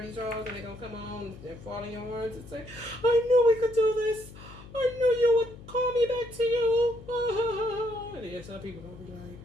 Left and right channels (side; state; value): left; noise; hum, 17 dB below the sound